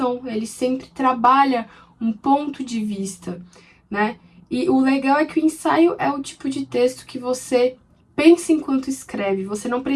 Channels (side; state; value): both; identical; correlation 1.00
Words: ele sempre trabalha um ponto de vista, né? E o legal é que o ensaio é o tipo de texto que você pensa enquanto escreve, você não